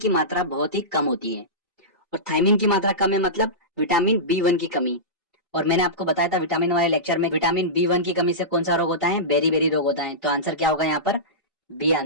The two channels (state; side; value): normal; both; correlation -0.17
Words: मात्रा बहुत ही कम होती है, और थायमीन की मात्रा कम है मतलब विटामिन B1 की कमी। और मैंने आपको बताया था विटामिन वाले लेक्चर में, विटामिन B1 की कमी से कौन सा रोग होता है? बेरी बेरी रोग होता है। तो आंसर क्या होगा यहाँ पर? बी